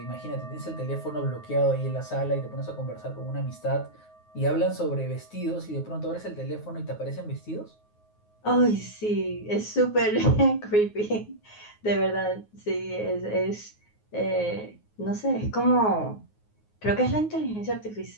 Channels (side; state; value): right; late; 9.5 ms